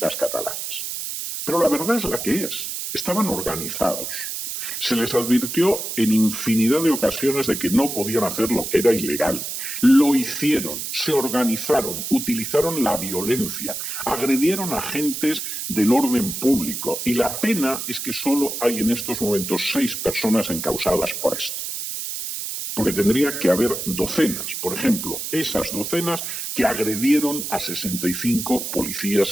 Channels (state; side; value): noise; right; hiss, 5 dB below the sound